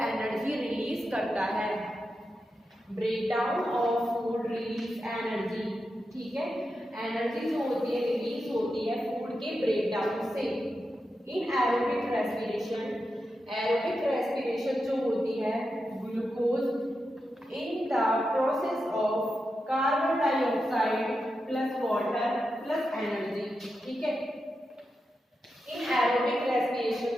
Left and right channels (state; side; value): normal; both; correlation 0.88